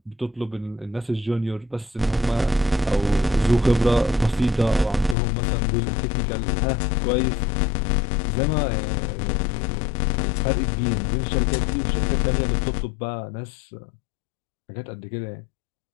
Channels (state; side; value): drops out; right; at 5.2 s